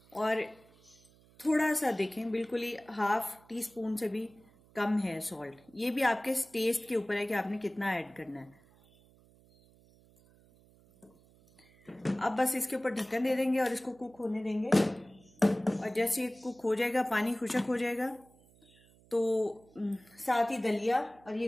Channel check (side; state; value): right; noise; hum, 28 dB below the sound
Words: और थोड़ा सा देखें, बिल्कुल ही ½ टीस्पून से भी कम है सॉल्ट। ये भी आपके टेस्ट के ऊपर है कि आपने कितना ऐड करना है। अब बस इसके ऊपर ढक्कन दे देंगे और इसको कुक होने देंगे। और जैसे ये कुक हो जाएगा, पानी खुशक हो जाएगा, तो साथ ही दलिया और